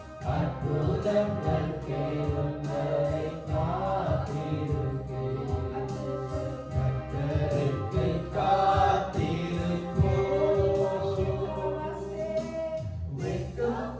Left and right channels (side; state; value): both; identical; correlation 1.00